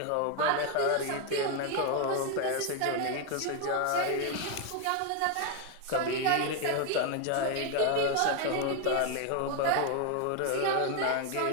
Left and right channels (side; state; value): both; different; correlation 0.01